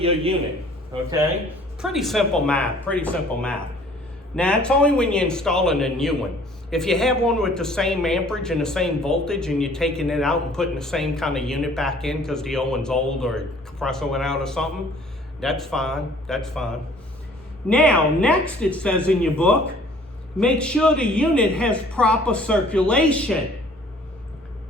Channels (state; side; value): normal; both; correlation 0.55